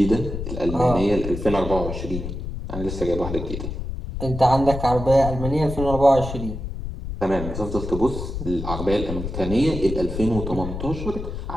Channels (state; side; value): noise; left; rumble, 6 dB below the sound